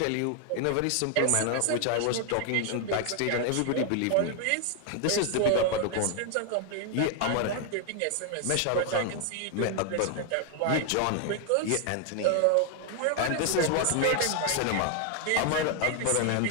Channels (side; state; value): both; different; correlation 0.00